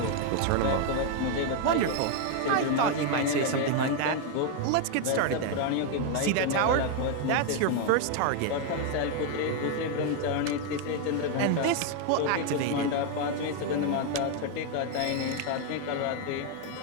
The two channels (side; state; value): both; different; correlation 0.01